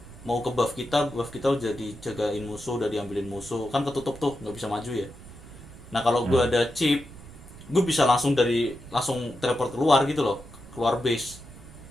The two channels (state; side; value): noise; right; rumble, 17 dB below the sound